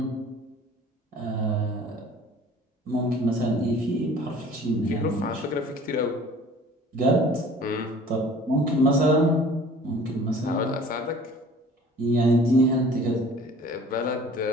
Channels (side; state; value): both; normal; correlation 0.48